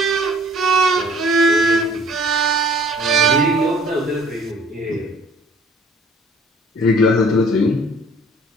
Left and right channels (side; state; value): both; normal; correlation 0.53